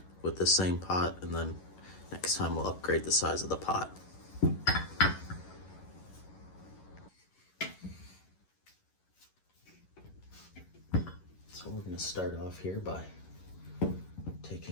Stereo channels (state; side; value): late; right; 11 ms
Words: with the same pot and then next time we'll upgrade the size of the pot. So we're going to start off here by